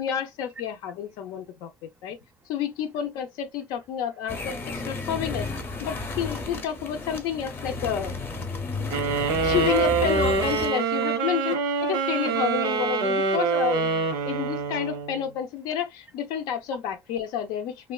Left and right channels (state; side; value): normal; both; correlation 0.17